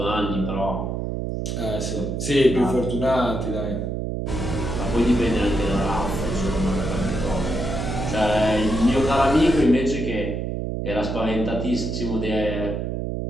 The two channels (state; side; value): noise; right; hum, 2 dB below the sound